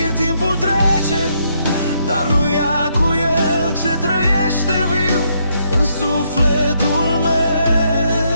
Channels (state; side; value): inverted; both; correlation -0.75